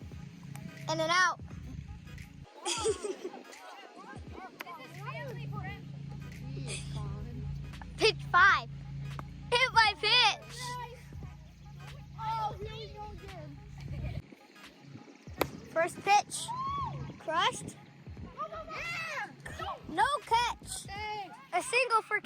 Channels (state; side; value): identical; both; correlation 1.00